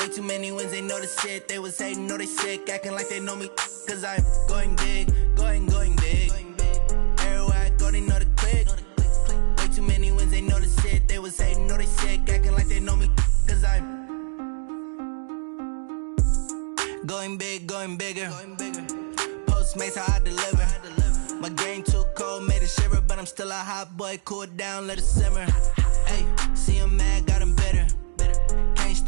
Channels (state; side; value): silent; left; 64 dB below the other